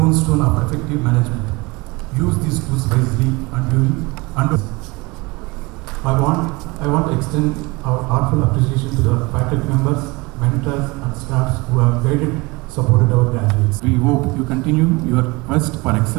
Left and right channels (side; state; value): left; quieter; 24.4 dB